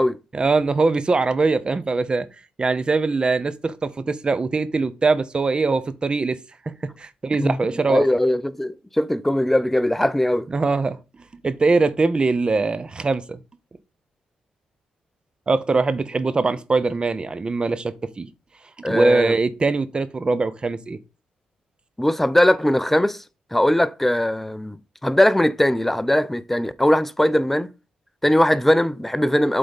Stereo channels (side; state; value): both; normal; correlation 0.95